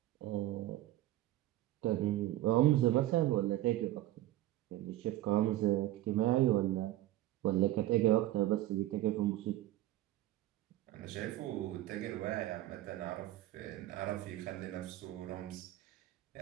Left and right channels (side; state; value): left; quieter; 15.0 dB